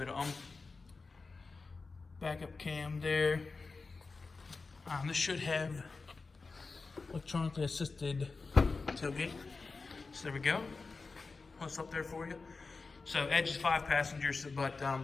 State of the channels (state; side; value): quieter; right; 4.1 dB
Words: of backup cam there. This should have electronically assisted tailgate. So there we go. What's up there for you? So Edge is 5 passengers, but